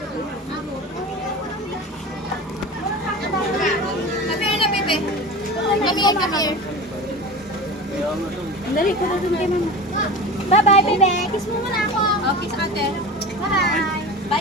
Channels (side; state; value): both; normal; correlation 0.32